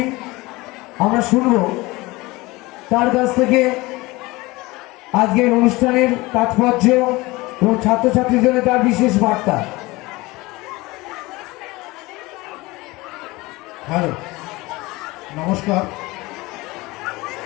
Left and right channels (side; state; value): right; quieter; 21.7 dB